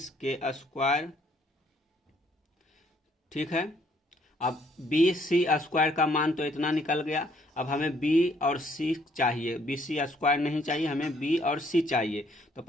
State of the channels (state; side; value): normal; both; correlation 0.66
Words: के स्क्वायर। ठीक है। अब बी सी स्क्वायर का मान तो इतना निकल गया। अब हमें बी और सी चाहिए, बी सी स्क्वायर नहीं चाहिए, हमें बी और सी चाहिए। तो